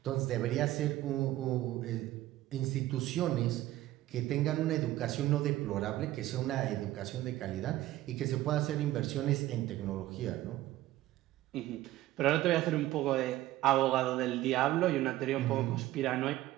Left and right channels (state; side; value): quieter; left; 15.4 dB